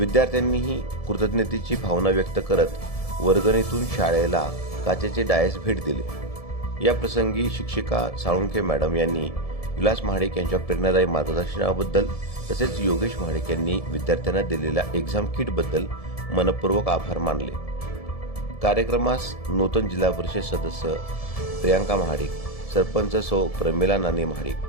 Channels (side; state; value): right; late; 1.7 ms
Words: कृतज्ञतेची भावना व्यक्त करत वर्गणीतून शाळेला काचेचे डायस भेट दिले. या प्रसंगी शिक्षिका साळुंखे मॅडम यांनी विलास महाडिक यांच्या प्रेरणादायी मार्गदर्शनाबद्दल तसेच योगेश महाडिक यांनी विद्यार्थ्यांना दिलेल्या एक्झाम किटबद्दल मनपूर्वक आभार मानले. कार्यक्रमास नूतन जिल्हा परिषद सदस्य प्रियांका महाडिक, सरपंच सौ प्रमिला नानी महाडिक,